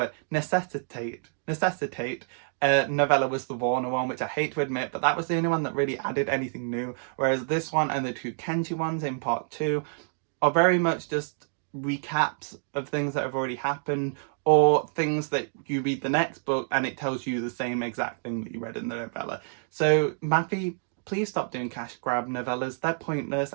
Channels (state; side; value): silent; left; digital silence